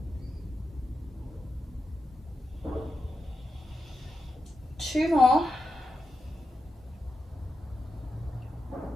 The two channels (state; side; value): normal; both; correlation 0.88